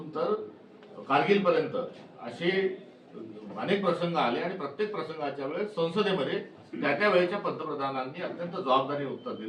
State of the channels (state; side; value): identical; both; correlation 1.00